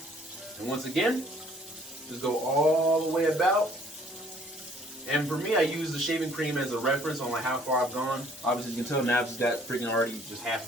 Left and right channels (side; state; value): both; normal; correlation 0.59